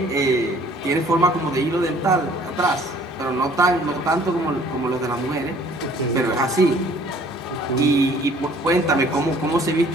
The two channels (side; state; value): both; normal; correlation 0.56